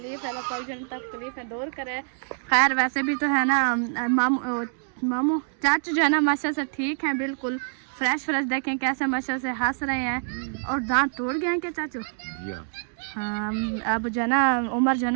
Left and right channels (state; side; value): silent; left; digital silence